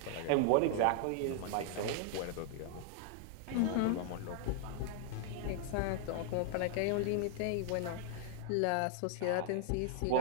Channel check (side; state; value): both; different; correlation 0.00